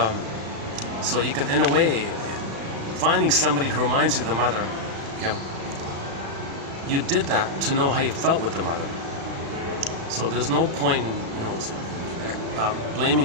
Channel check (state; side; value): late; left; 36 ms